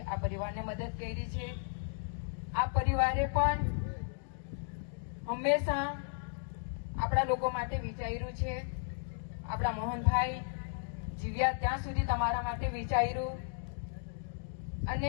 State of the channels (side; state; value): right; silent; digital silence